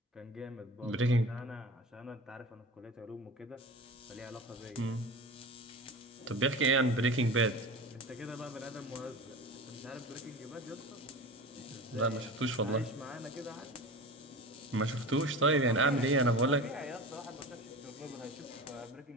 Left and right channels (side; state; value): both; normal; correlation 0.32